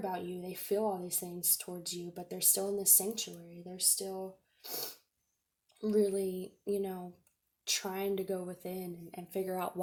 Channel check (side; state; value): both; identical; correlation 1.00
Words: you. They feel all these things towards you, but they're still in this sanctuary. They're still really, trying to go within and figure out